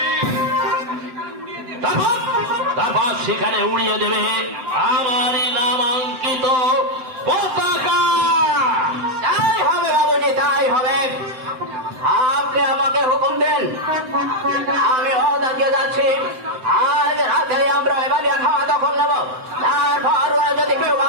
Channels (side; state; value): left; late; 7.8 ms